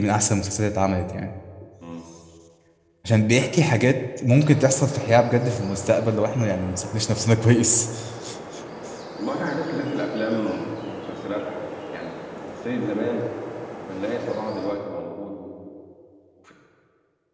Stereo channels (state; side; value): identical; both; correlation 1.00